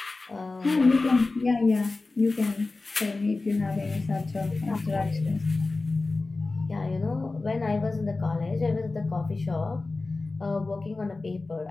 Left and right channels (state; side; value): quieter; right; 3.5 dB